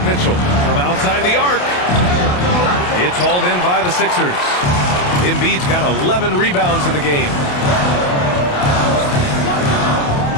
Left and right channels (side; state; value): right; late; 28 ms